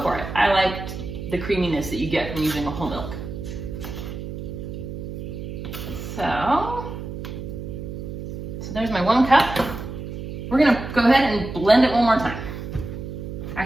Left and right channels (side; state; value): right; noise; hum, 8 dB below the sound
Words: for it. I like the creaminess that you get from using a whole milk. So there's my 1 cup. We're gonna go ahead and blend it one more time.